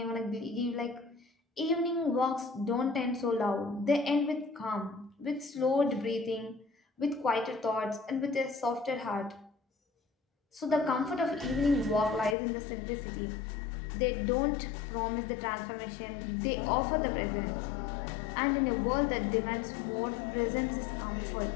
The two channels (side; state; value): right; drops out; at 12.4 s